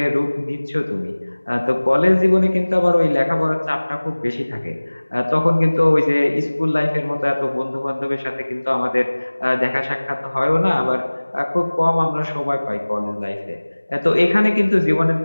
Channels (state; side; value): inverted; both; correlation -1.00